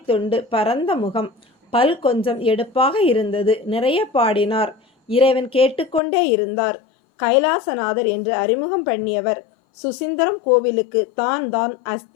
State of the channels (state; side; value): drops out; right; at 6.0 s